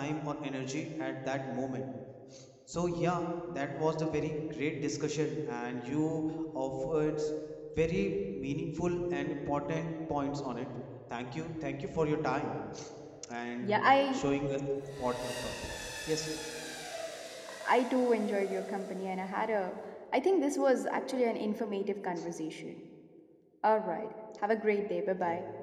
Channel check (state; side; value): identical; both; correlation 1.00